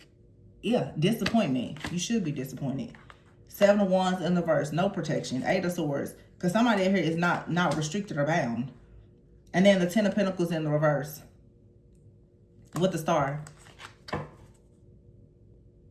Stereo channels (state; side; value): identical; both; correlation 1.00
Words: Yeah, disappointment. You should be disappointed. 7 of Wands in the reverse. No protection. 8 of Swords. Because somebody here is not restricted or bound. And then the 10 of Pentacles in the reverse. With the Star.